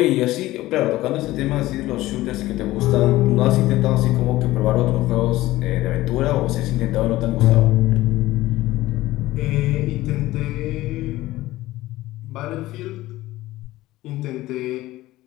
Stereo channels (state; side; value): quieter; right; 17.0 dB